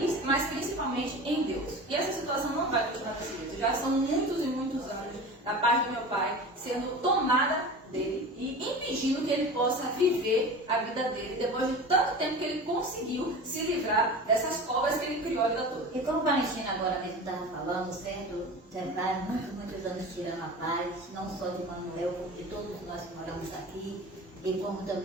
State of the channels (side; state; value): both; normal; correlation 0.33